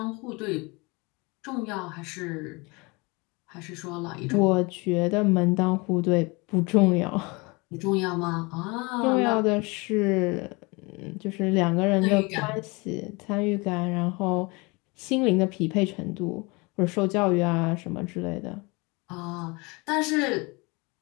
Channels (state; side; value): quieter; right; 27.1 dB